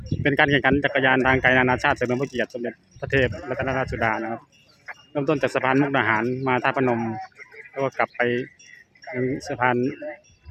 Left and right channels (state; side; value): identical; both; correlation 1.00